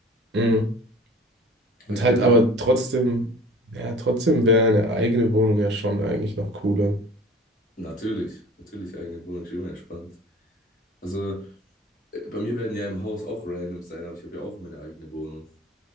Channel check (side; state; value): both; normal; correlation 0.45